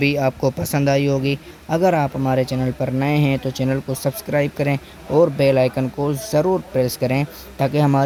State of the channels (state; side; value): identical; both; correlation 1.00